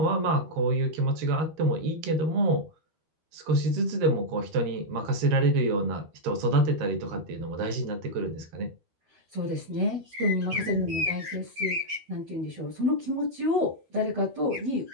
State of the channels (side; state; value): left; late; 12 ms